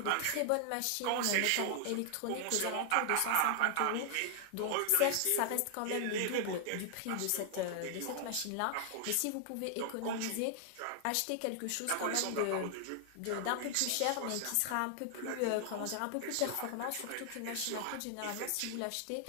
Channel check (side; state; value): both; different; correlation 0.00